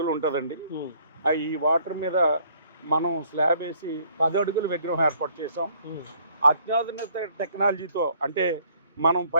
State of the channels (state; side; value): inverted; both; correlation -0.61